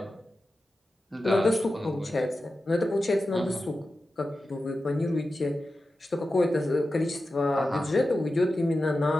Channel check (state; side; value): normal; both; correlation 0.92